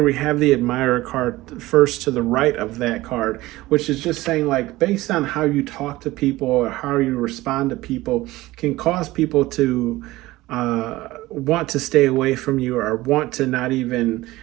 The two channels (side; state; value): left; quieter; 18.3 dB